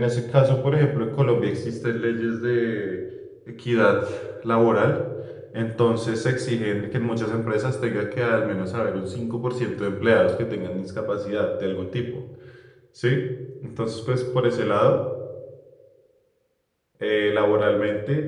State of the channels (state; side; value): identical; both; correlation 1.00